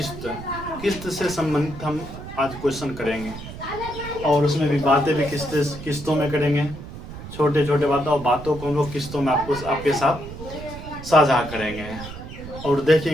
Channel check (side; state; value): right; noise; rumble, 12 dB below the sound